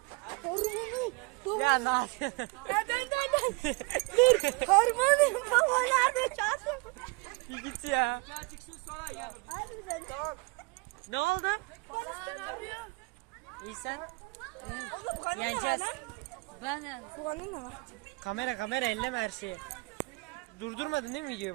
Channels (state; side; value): quieter; left; 27.2 dB